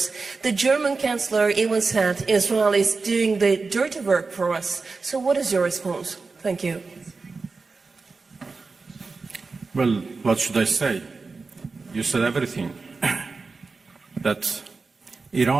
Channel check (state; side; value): quieter; left; 4.2 dB